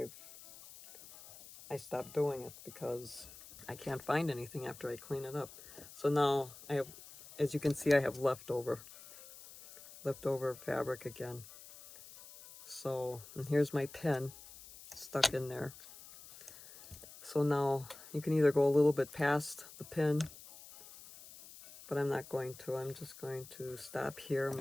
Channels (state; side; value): noise; left; hiss, 17 dB below the sound